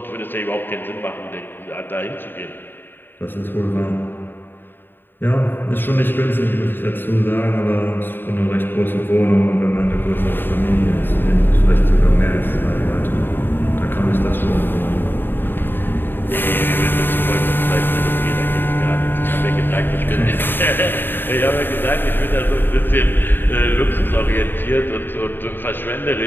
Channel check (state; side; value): late; right; 0.096 ms